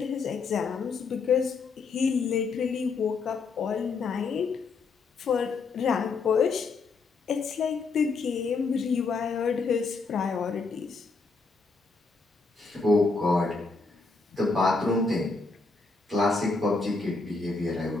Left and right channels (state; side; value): quieter; right; 4.2 dB